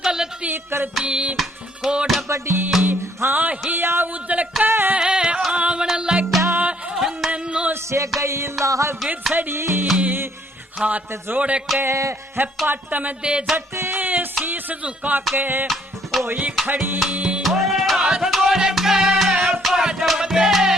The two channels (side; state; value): both; normal; correlation 0.65